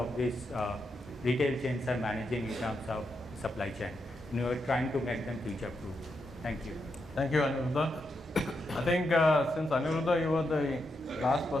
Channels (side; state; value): both; normal; correlation 0.83